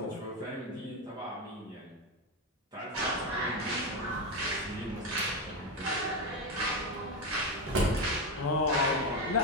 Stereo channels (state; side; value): normal; both; correlation 0.12